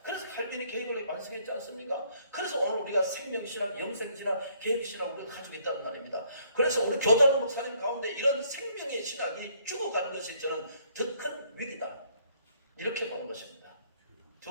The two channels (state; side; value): inverted; both; correlation -0.66